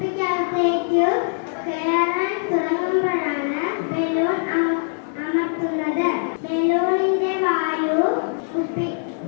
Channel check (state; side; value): silent; right; digital silence